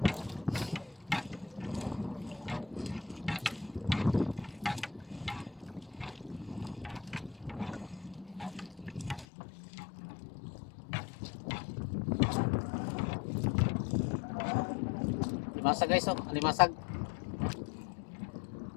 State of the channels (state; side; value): drops out; right; at 9.2 s